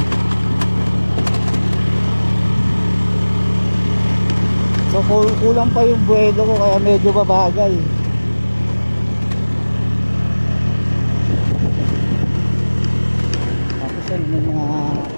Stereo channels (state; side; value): inverted; both; correlation -1.00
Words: So kulang pa yung buwelo ko kaya medyo babagal. Tapos yan may mga